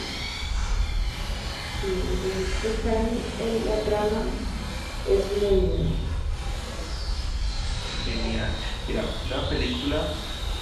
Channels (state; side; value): identical; both; correlation 1.00